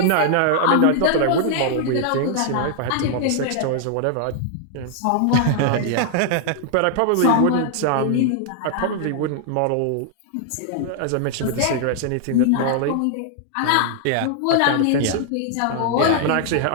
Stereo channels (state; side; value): different; both; correlation 0.00